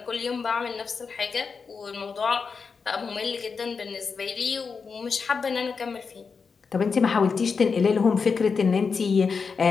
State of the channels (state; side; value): quieter; right; 5.3 dB